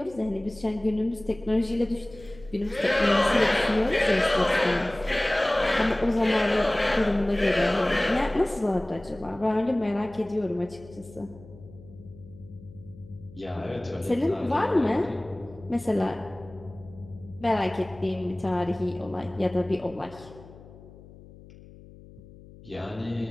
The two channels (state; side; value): noise; left; hum, 20 dB below the sound